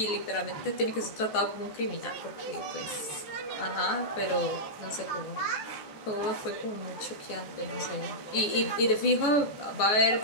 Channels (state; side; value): late; right; 14 ms